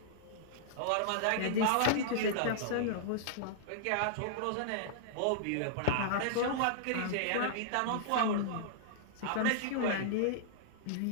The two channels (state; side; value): different; both; correlation -0.02